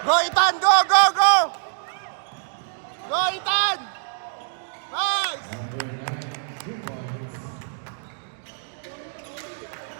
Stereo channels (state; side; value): silent; left; digital silence